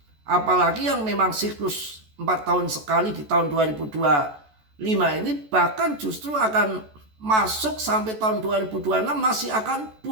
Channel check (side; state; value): left; late; 14 ms